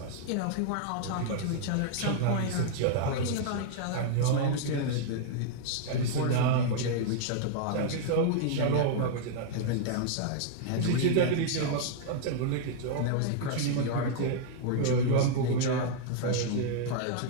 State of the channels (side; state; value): both; different; correlation 0.00